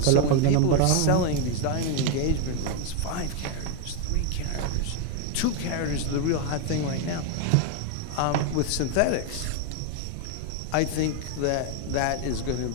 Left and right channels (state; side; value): different; both; correlation 0.01